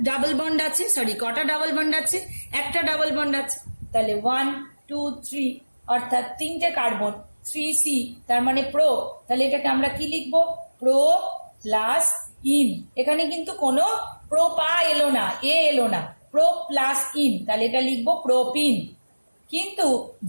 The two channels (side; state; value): both; inverted; correlation -1.00